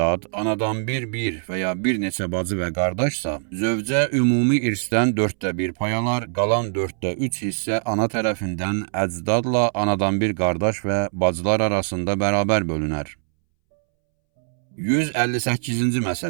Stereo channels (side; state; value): left; silent; 64 dB below the other